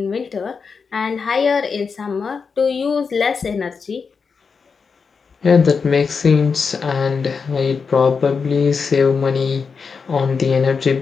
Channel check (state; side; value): quieter; right; 5.4 dB